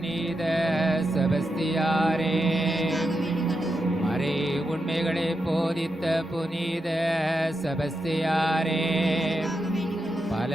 செபஸ்தியாரே, மறை உண்மைகளை போதித்த புனித செபஸ்தியாரே,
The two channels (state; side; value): normal; both; correlation 0.86